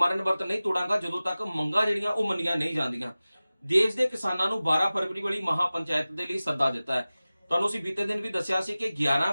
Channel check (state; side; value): inverted; both; correlation -0.97